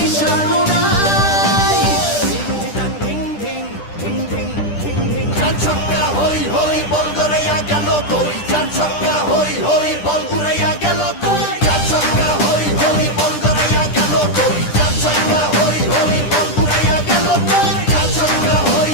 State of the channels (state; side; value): late; right; 10 ms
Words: উড়াই। Ding ding ding ding ding ding. চার ছক্কা হই হই, বল গড়াইয়া গেল কই। চার ছক্কা হই হই, বল উড়াইয়া গেল কই। চার ছক্কা হই হই, বল গড়াইয়া গেল কই। চার ছক্কা হই হই, বল উড়াইয়া গেল কই। চার ছক্কা হই